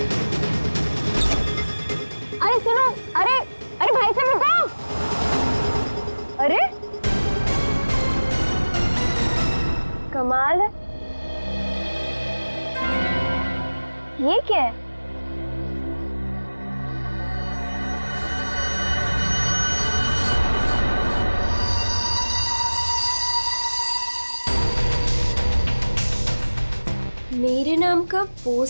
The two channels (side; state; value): both; inverted; correlation -1.00